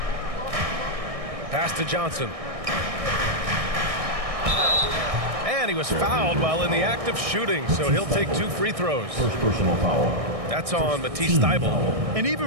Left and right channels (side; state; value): left; late; 1.6 ms